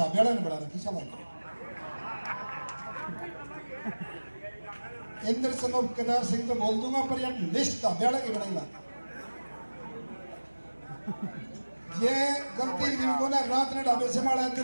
ने बना रखी। चलो इंद्र सनोप केदार सिंह तो बोल दूंगा, पर यार लिस्ट ढाबेड़ा की बनाई ला। ये गलती जिनको ना रात ने ढाबे से मारा,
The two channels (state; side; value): inverted; both; correlation -1.00